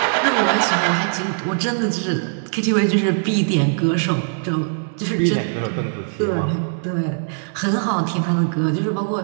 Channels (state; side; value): silent; left; digital silence